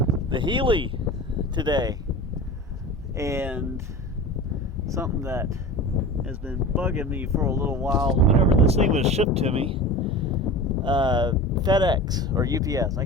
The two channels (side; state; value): both; normal; correlation 0.33